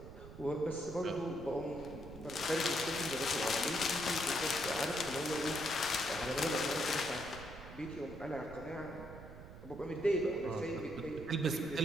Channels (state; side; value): noise; right; rumble, 14 dB below the sound